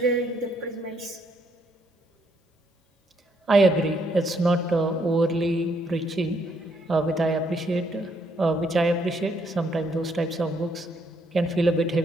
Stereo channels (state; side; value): normal; both; correlation 0.72